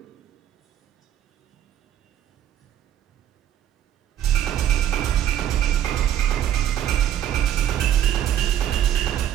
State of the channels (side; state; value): left; quieter; 11.0 dB